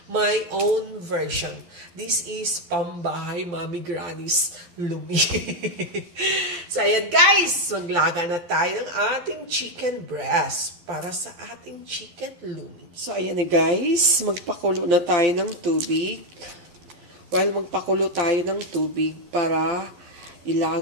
My own version. This is pambahay Mommy Granny's lumi. So, ayan guys! Maglaga na tayo ng ating chicken breast para sa ating chicken lumi. So, ayan na guys. Magpakulo na tayo ng tubig. While magpakulo tayo ng tubig para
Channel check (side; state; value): left; late; 12 ms